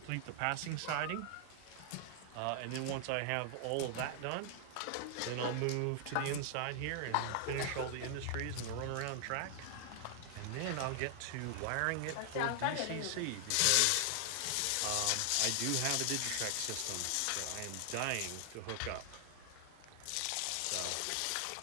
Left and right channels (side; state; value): both; different; correlation 0.00